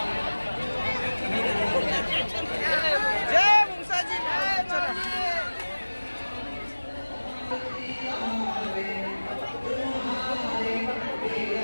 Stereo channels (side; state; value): both; inverted; correlation -1.00